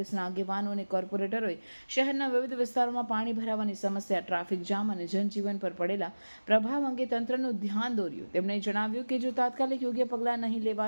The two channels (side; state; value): both; inverted; correlation -1.00